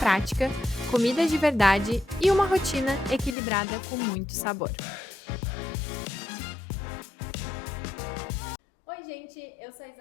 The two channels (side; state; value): right; drops out; at 3.4 s